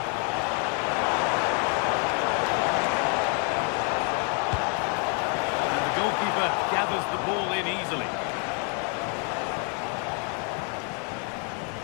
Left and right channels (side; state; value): right; quieter; 39.0 dB